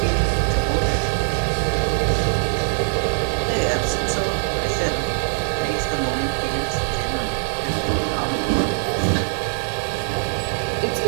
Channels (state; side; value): silent; left; digital silence